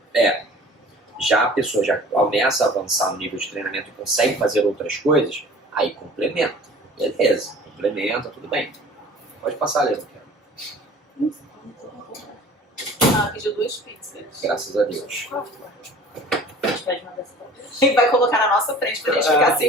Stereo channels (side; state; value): both; normal; correlation 0.46